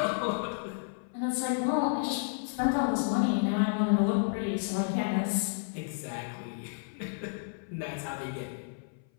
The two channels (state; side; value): silent; right; 56 dB below the other